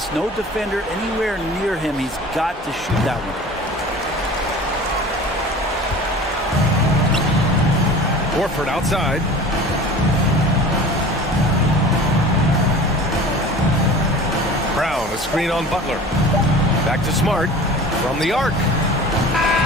no defender anywhere near him. He's got to shoot that one. Horford outside. Brown, a screen on Butler. Back to Smart from the arc.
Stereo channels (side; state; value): both; normal; correlation 0.40